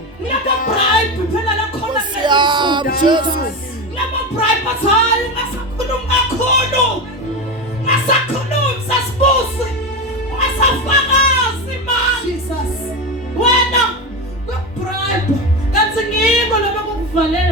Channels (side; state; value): both; normal; correlation 0.19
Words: ngiyaka-bribe phela lakhona Jesu. ngiyaka-bribe bathi hayi ungasakhulumi kakhulu ungasakhulumi sasibusi ungasafakazi mani wena kwe-bribe kanti ngiko lobe